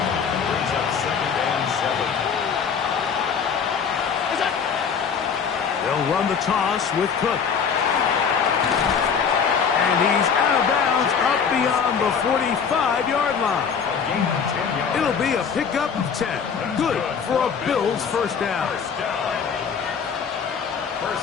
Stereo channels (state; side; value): quieter; right; 6.6 dB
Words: Brings up 2nd and 7. They'll run the toss with Cook. And he's out of bounds up beyond the 45-yard line. It'll be a pickup of 10. Good for a Bills first down.